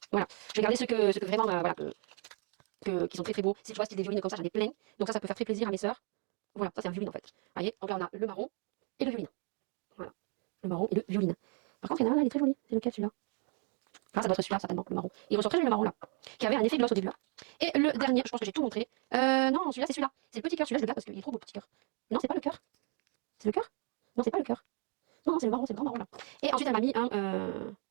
Voilà. Je vais garder ceux que vraiment, voilà, qui sont très très beaux. Si tu vois, style des violines comme ça, j'en ai plein. Donc, ça peut faire très plaisir à mes soeurs. Voilà, ça c'est un violine en fait. Vous voyez, donc là on a le marron et le violine. Voilà. Le marron et le violine. Par contre, il y en a un là, il est très joli. C'est lequel celui-là? Ah, ça doit être celui-là, certainement, le marron. Il ressort très joli le marron là. Qui avait un effet gloss au début là. Et le dernier, je pense que j'ai tout montré. Non, celui-là, c'est celui-là. C'est le petit cœur. Celui-là, je le garde parce qu'il est trop beau, petit cœur. Non, c'est pas le cœur. C'est le cœur? Non, c'est pas le cœur. Non, c'est le marron, c'est le grand marron là. Et ensuite, elle m'a mis un.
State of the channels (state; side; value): quieter; left; 38.6 dB